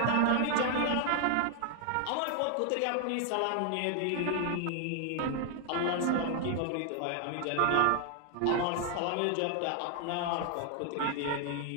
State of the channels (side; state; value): both; different; correlation 0.00